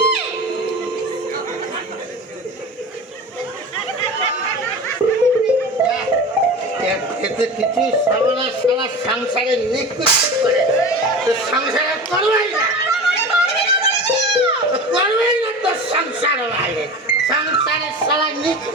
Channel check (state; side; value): normal; both; correlation 0.32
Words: খেতে কিছু সারা সারা সংসারে নিকুচ করে, তো সংসারে করবেই না, করবেই না তোর সংসার বাইরে, সংসারে সারা